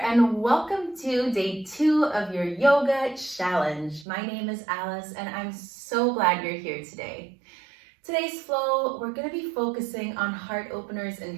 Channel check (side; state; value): left; drops out; at 4.0 s